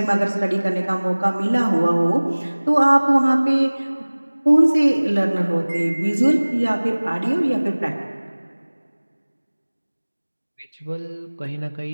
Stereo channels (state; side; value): inverted; both; correlation -1.00